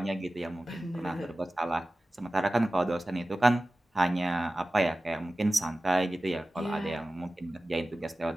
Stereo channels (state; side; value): normal; both; correlation 0.96